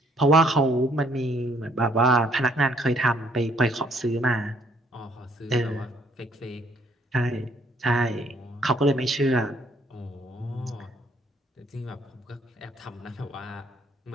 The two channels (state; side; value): normal; both; correlation 0.66